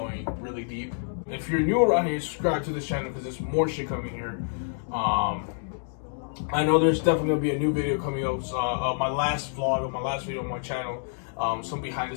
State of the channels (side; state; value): right; silent; digital silence